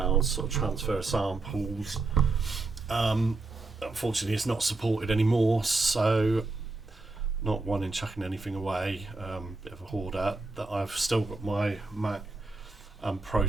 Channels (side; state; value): left; quieter; 3.4 dB